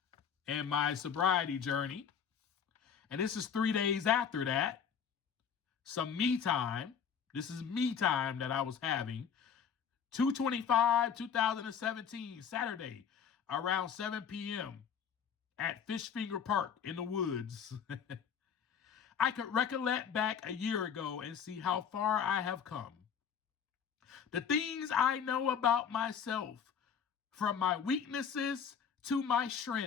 in my sobriety journey. And this is 3 days after that. Some me time. This is me time that I was having. 2/25/2017, Saturday, around 7 p.m. at Fishfinger Park in the woods. I could recollect back a year ago and see how far I have come. The things I know about myself, from my weaknesses to my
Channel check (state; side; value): quieter; right; 7.4 dB